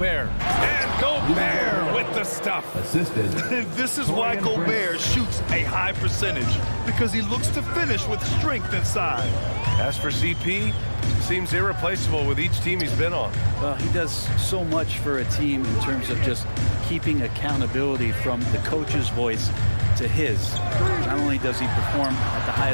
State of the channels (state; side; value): inverted; both; correlation -1.00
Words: And Gobert with the stuff. Assisted. This is why Gobert shoots a high percentage, because he looks to finish with strength inside. As for CP, seems irreplaceable with each team he's been on. Well, he does so much for a team in terms of just keeping accountability from the coach's voice to his. Not only does he perform at the